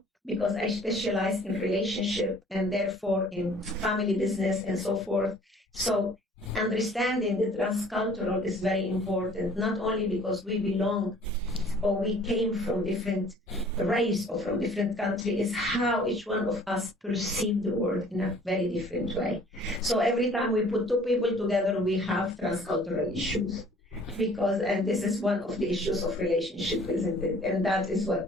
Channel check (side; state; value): both; normal; correlation 0.53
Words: because I specialize in relationship and therefore in family business and so forth. So understanding the transcultural is very important, not only because we belong or we came from different race or from different country, is how each one of us perceive the world in a very different way. So every time we put two people together, we have transcultural issues. And this is one of the issues of relationship, isn't it? And that is what